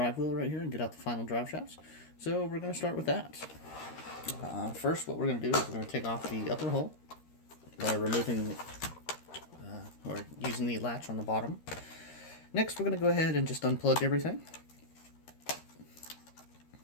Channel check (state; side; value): late; right; 13 ms